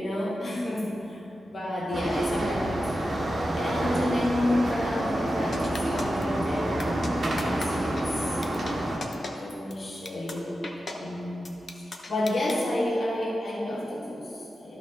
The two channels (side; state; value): both; normal; correlation 0.91